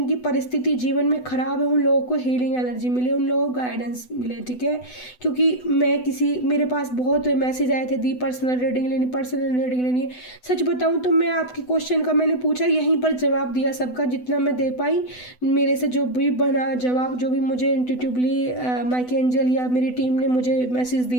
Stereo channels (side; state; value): right; late; 8.0 ms